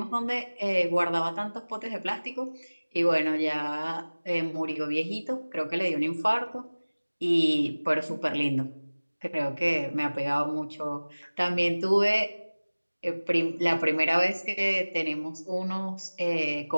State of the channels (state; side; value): inverted; both; correlation -1.00